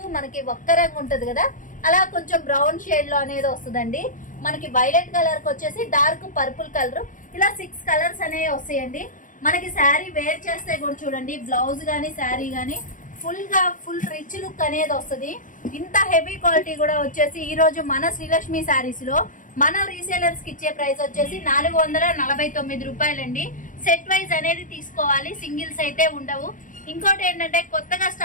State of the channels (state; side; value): late; right; 0.38 ms